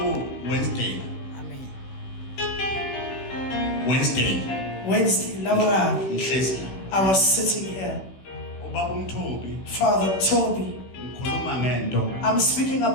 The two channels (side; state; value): right; late; 16 ms